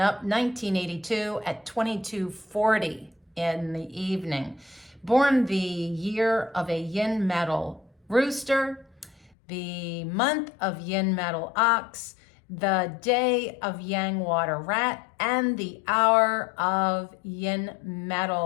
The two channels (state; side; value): drops out; right; at 9.3 s